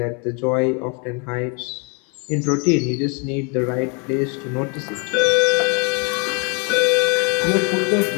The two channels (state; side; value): quieter; right; 34.4 dB